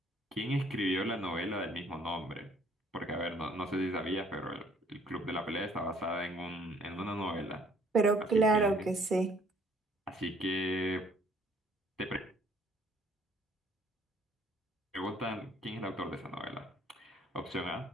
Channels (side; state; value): both; normal; correlation 0.60